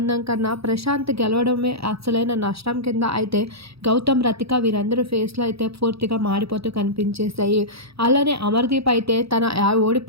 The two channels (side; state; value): left; late; 0.77 ms